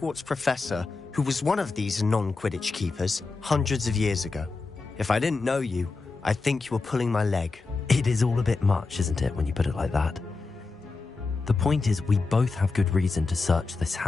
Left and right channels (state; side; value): quieter; right; 4.0 dB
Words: professor who was one of these non-Quidditch keepers hundreds of years ago. If I didn't know you, I'd think you were pulling my leg. It is all a bit much, isn't it, when you put it like that? The point is, we both have good reason to search this